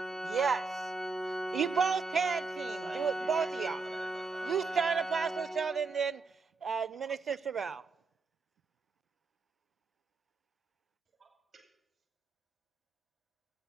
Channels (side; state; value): left; quieter; 4.4 dB